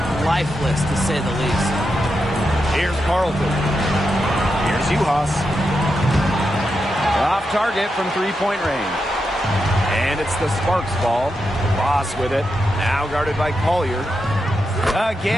lifeless, to say the least. Here's Carlton. Here's Uhas. Off target from three-point range. And it's the Sparks ball. Boss with it. Now guarded by Collier.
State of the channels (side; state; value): both; normal; correlation 0.86